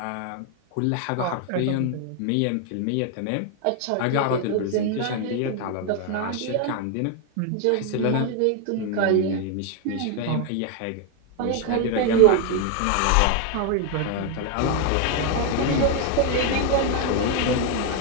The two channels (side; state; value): both; different; correlation 0.01